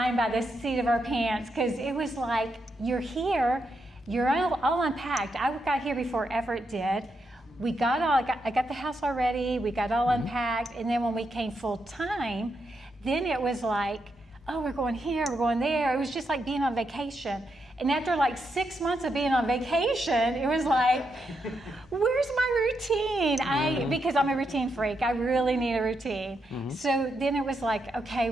by the seat of our pants because it was like, you're here, you're all unpacked. I got here before Everett did. We got I got the house already, we got all unpacked, and then when we came full time, then it was like, oh, we're going here, we're going there. It was just like being on vacation. And after like 6 months of being on vacation, it was like, where's my routine? Because I'm a routine freak. I really need a routine. So then it was like, okay,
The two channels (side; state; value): both; normal; correlation 0.82